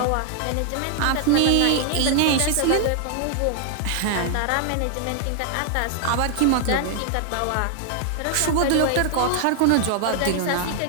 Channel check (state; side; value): different; both; correlation 0.00